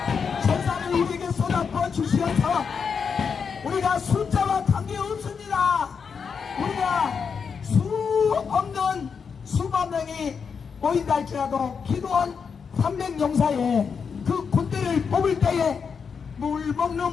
천사를 우리에게 쏟아부어 주시어서 우리가 숫자와 관계없습니다. 우리가 수 없는 수만 명이 모인다 할지라도 기도원 300용사에 그 군대를 뽑을 때에 물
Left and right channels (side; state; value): right; quieter; 6.1 dB